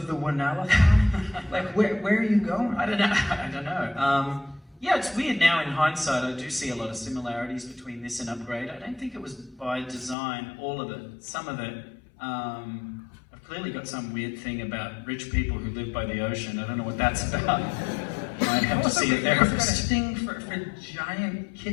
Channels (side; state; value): right; drops out; at 10.2 s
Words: Whannell? Like, where are you going? I don't know. Yeah, it's weird now in hindsight. I do see a lot of similarities between this and Upgrade. I don't think it was by design, all of it. Some of it, I've clearly got some weird thing about rich people who live by the ocean. I don't know what that's about. You might have to see a therapist. I've got a thing for giant